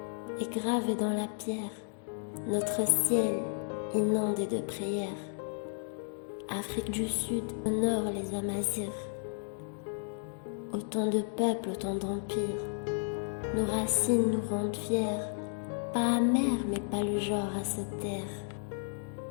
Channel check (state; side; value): silent; right; digital silence